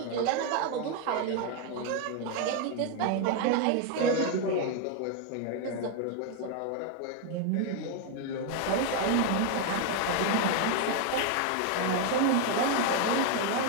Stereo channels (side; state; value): both; different; correlation 0.01